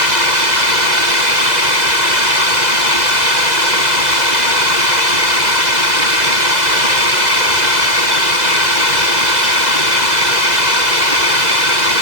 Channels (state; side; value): late; left; 1.9 ms